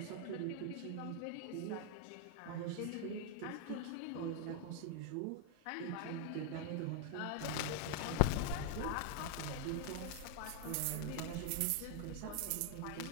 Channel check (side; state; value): both; different; correlation 0.00